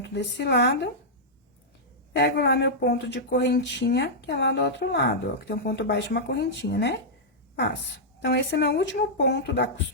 desse lado. Pego lá meu ponto de correntinha, que é lá do outro lado, ó, que tem um ponto baixo e uma correntinha, né? Passo. Então, esse é meu último ponto da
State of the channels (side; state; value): both; normal; correlation -0.09